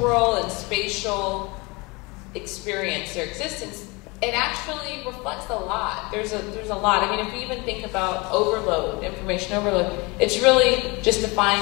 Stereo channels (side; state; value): right; quieter; 26.3 dB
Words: and spatial experience, their existence, it actually reflects a lot. There's a lot. I mean, if you even think about overload, information overload, it's really just